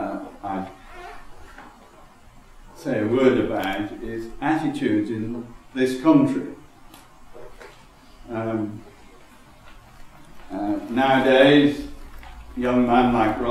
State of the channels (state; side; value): identical; both; correlation 1.00